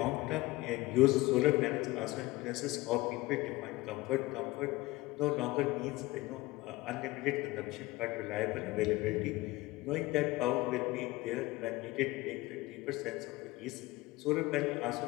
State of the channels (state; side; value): quieter; right; 20.3 dB